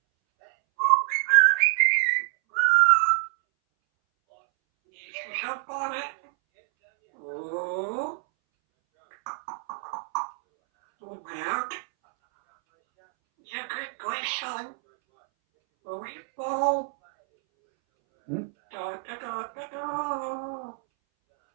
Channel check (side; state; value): left; silent; 61 dB below the other